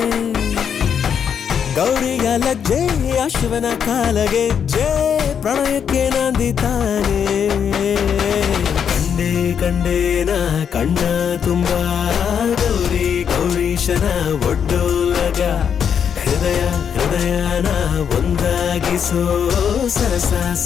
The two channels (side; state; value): right; quieter; 7.7 dB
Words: ಗೌರಿಯ ಲಜ್ಜೆ ಅಶ್ವನ ಕಾಲಗೆಜ್ಜೆ ಪ್ರಣಯಕ್ಕೆ ನಂದಿ ತಾನೆ ಕಂಡೆ ಕಂಡೇನ ಕಣ್ಣ ತುಂಬ ಗೌರಿ ಗೌರೀಶನ ಒಡ್ಡೋಲಗ ಹೃದಯ ಹೃದಯನ ಒಂದಾಗಿಸೋ ಸರಸ